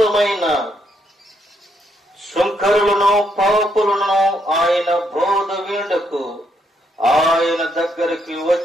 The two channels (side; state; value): both; normal; correlation 0.75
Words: శుంకరులను, పాపులను ఆయన బోధ వినుటకు ఆయన దగ్గరికి